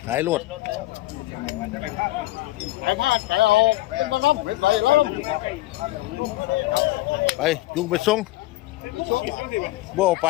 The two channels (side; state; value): right; quieter; 17.9 dB